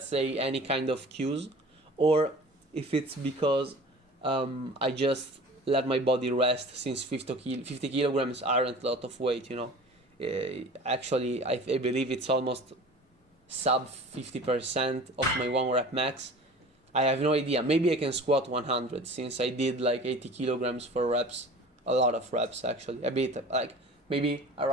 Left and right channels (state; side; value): normal; both; correlation 0.41